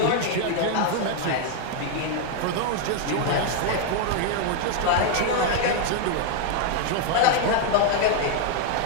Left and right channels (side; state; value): both; different; correlation 0.00